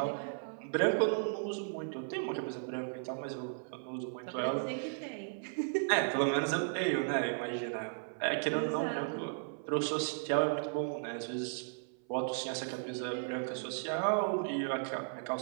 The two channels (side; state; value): left; silent; 54 dB below the other